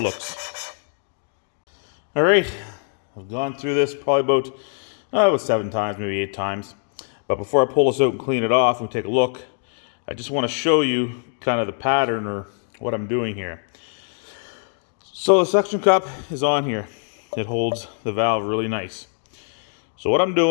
looks. All right, I've gone through this probably about 7 times, maybe 8 times. But before I pull this out and clean it off and take a look, I just want to show you kind of the pattern or what I'm doing here. So the suction cup is on here. It holds the valve really nice. So what I'm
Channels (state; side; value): silent; right; 63 dB below the other